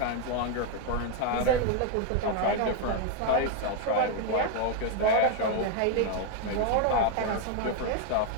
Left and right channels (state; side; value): different; both; correlation 0.01